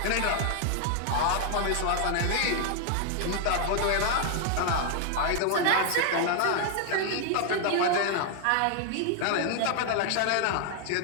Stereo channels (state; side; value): different; both; correlation 0.00